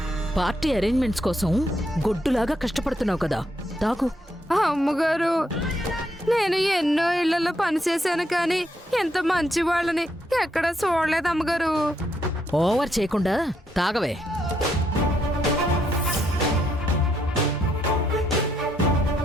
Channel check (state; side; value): normal; both; correlation 0.76